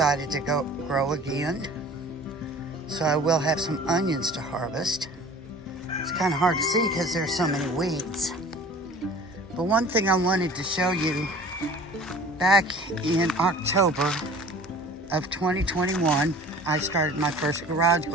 to grow again. So I will have some onions to harvest. It's kind of hard to see because there's so many weeds. But one thing I wanted to show you, back in October of 2021, I started my first garage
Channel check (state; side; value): normal; both; correlation 0.45